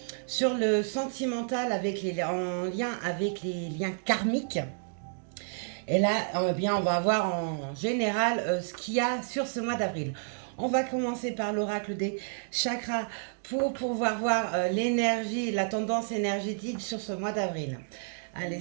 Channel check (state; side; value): silent; left; digital silence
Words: sur le sentimental en lien avec les liens karmiques. Et là, bien, on va voir en général ce qu'il y a sur ce mois d'avril. On va commencer par l'oracle des chakras pour pouvoir voir l'énergie, la tendance énergétique sur ce mois d'avril. Allez,